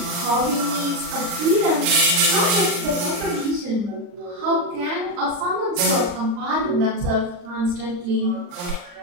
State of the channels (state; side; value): late; left; 39 ms